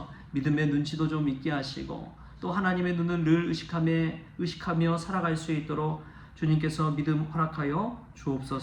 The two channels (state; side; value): identical; both; correlation 1.00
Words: 믿음의 눈치도 좀 있게 하시고 또 하나님의 눈을 늘 의식하며 살아갈 수 있도록 주님께서 믿음 허락하여